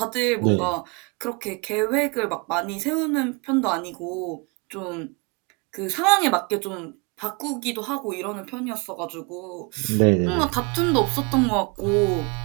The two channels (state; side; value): quieter; left; 30.3 dB